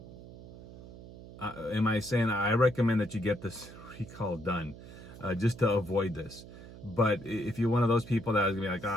am I saying I recommend that you get this recall done just to avoid this? But if you're one of those people that is gonna be like, oh,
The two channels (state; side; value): noise; right; hum, 16 dB below the sound